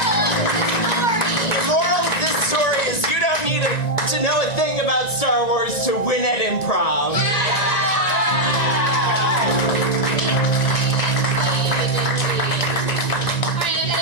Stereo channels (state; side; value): late; right; 1.9 ms